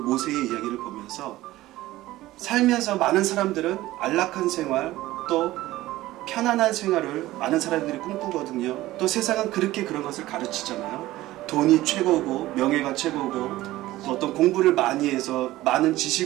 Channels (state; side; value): quieter; left; 16.6 dB